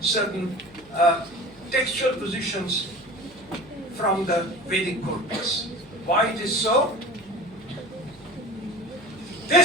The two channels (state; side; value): noise; right; hum, 25 dB below the sound